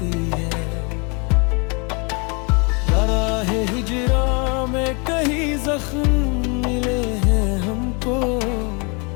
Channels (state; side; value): quieter; right; 32.3 dB